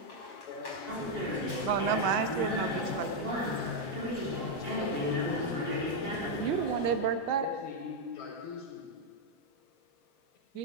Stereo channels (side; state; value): right; late; 7.5 ms